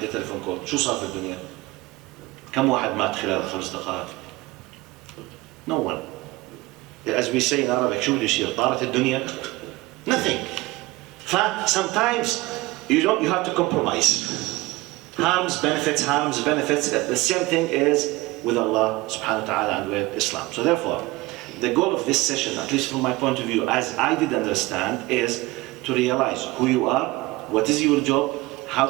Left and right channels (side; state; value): left; quieter; 20.7 dB